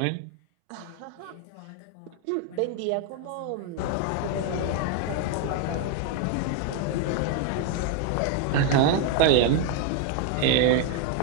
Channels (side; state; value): both; different; correlation 0.01